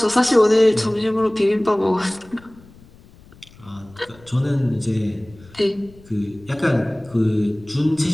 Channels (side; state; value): left; noise; rumble, 24 dB below the sound